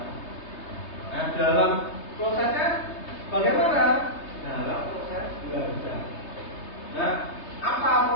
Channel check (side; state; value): right; late; 3.3 ms